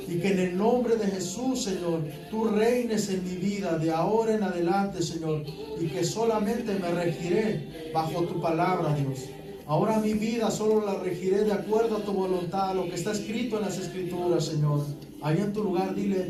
Y que en el nombre de Jesús, Señor, tú reines en mi vida de ahora en adelante, Señor. Y que solamente me regiré bajo tu palabra, Dios. Ahora mi vida solo la regiré de acuerdo a tu voluntad, lo que está escrito en las Escrituras, Señor. Ahí en tu lugar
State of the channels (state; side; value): identical; both; correlation 1.00